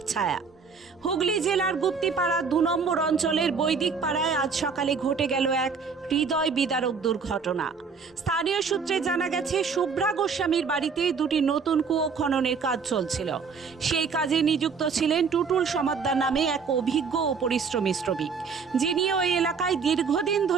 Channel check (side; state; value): left; quieter; 5.5 dB